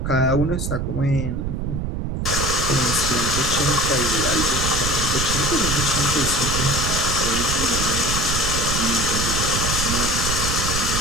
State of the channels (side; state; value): right; noise; rumble, 2 dB below the sound